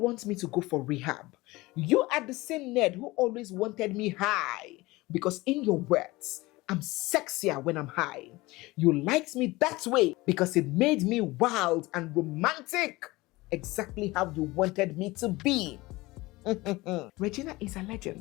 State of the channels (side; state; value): right; quieter; 20.7 dB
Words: me to go for rehab. You are the same Ned who always wanted me high, because in your words, I'm sexier when I'm high. You liked me that way because it made me wild and romantic. Exactly how you wanted me to be." Regina is